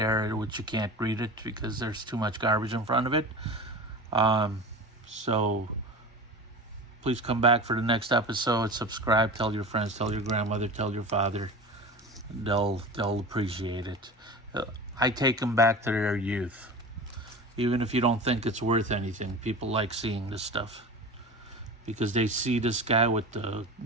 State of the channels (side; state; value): both; normal; correlation 0.32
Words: which you can't read it because there's too much garbage in front of it. So please come back for the next episode. Subscribe, tell your friends, tell your grandmother, tell your father. They'll appreciate it. I take them back to their youth. Even if you don't think it's worth anything, people like seeing this stuff. Because they see this guy with the